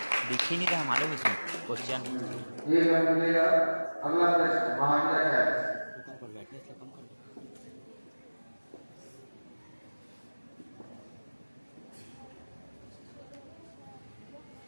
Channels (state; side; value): inverted; both; correlation -1.00